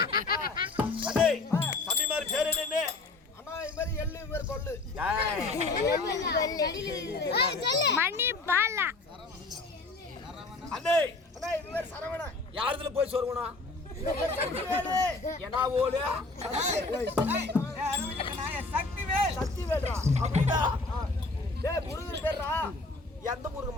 அதே தம்பி மாதிரி பேர் என்ன அண்ணா இந்த மாதிரி எள்ளு இந்த மாதிரி கொள்ளு மணி பாலா அண்ணே அண்ணா இந்த மாதிரி சரவணா யாருதுல போய் சொருவணும் என்ன ஓடு சக்தி வேடா அப்படின்னா டேய் முருகன் பேர்ரா எந்த முருகன்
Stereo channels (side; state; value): right; quieter; 3.5 dB